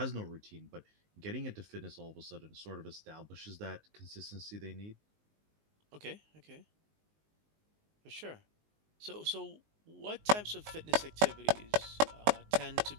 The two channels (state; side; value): late; left; 19 ms